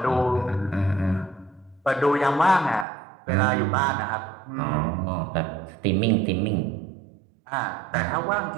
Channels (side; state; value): left; drops out; at 2.9 s